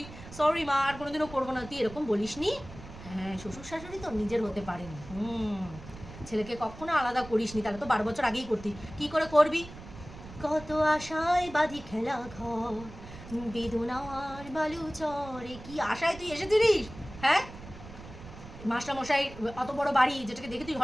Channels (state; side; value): noise; right; rumble, 15 dB below the sound